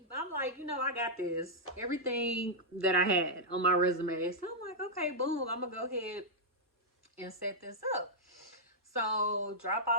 I'm like, I got this. Everything that I had on my resume. So I'm like, okay, boom, I'm gonna go ahead and set this up. So drop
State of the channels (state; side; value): normal; both; correlation -0.07